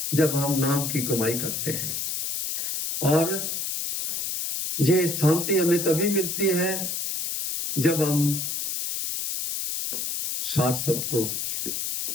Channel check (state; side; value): noise; left; hiss, 3 dB below the sound